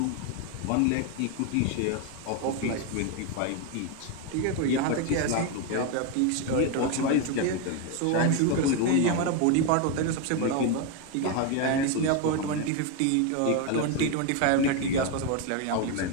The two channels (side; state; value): both; different; correlation 0.02